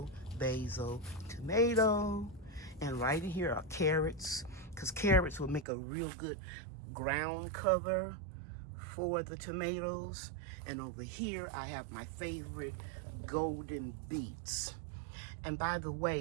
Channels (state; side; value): drops out; left; at 5.7 s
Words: basil, tomato. And right in here are carrots, because carrots will make a real good ground cover for the tomatoes. And over here I have my favorite golden beets. And by the